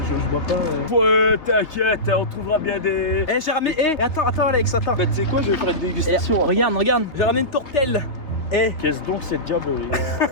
bois pas. Ouais, t'inquiète, on trouvera bien des. Eh, j'ai ramené. Attends, Alex, attends. Bah, tu sais quoi, je vais faire une dégustation. Regarde. J'ai ramené une tourtelle. Eh. Qu'est-ce donc cette diablerie?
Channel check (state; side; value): late; right; 3.3 ms